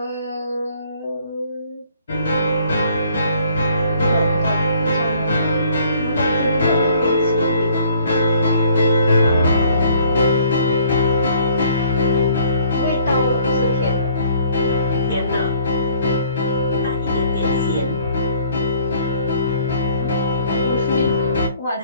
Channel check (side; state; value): both; inverted; correlation -0.59